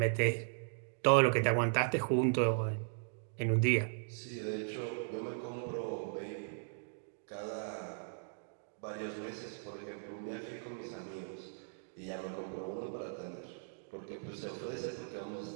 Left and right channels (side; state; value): left; silent; digital silence